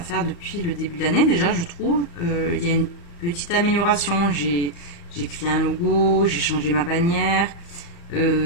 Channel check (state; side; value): late; right; 35 ms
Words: depuis le début de l'année déjà, je trouve. Il y a une petite amélioration. J'ai créé un logo, j'ai changé ma bannière.